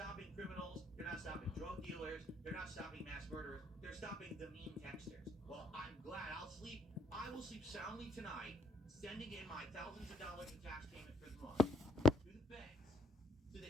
criminals, they're not stopping drug dealers, they're not stopping mass murderers, they're stopping the mean texters. Well, I'm glad I will sleep soundly tonight, sending in my thousands of dollars in tax payment for the month to the feds so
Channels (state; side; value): normal; both; correlation 0.68